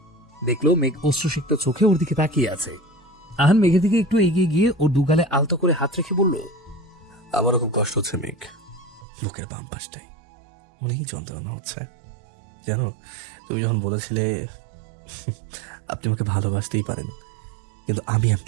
দেখলো মেঘ অশ্রুসিক্ত চোখে ওর দিকে তাকিয়ে আছে। আহান মেঘের দিকে একটু এগিয়ে গিয়ে ওর দুগালে আলতো করে হাত রেখে বলল, আমারও খুব কষ্ট হচ্ছে মেঘ, লোকের বাম পাশটাই অনেক যন্ত্রণা হচ্ছে। জানো, তুমি যখন বলেছিলে আপনি আমাকে ভালোবাসতেই পারেন কিন্তু আমি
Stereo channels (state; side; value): drops out; left; at 9.1 s